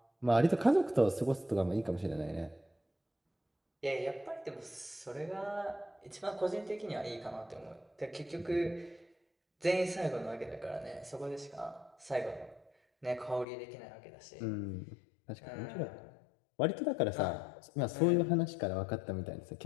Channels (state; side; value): drops out; right; at 13.5 s